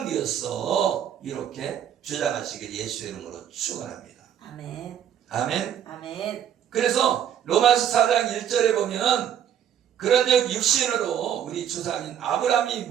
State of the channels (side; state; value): left; quieter; 9.7 dB